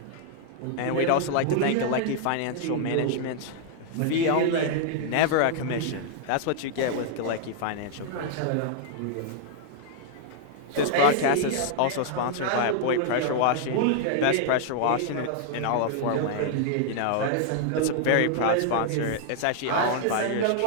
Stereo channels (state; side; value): different; both; correlation 0.00